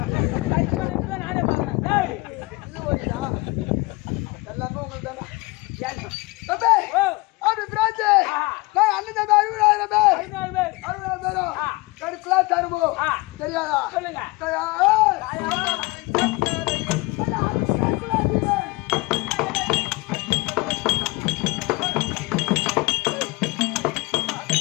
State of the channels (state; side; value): quieter; right; 23.8 dB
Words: நானே பாக்கிறேன். எல்லாமே உங்களுக்கு தானே ஏன்? தம்பி ஓ அப்படி பிராச்சு அண்ணன் தம்பி 60,000 பேர் 60,000 பேரும் கடுப்புலா தருமோ தெரியாதா சொல்லுங்க.